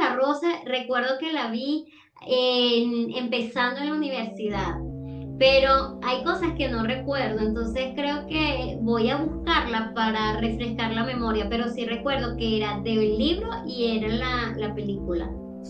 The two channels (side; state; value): both; identical; correlation 1.00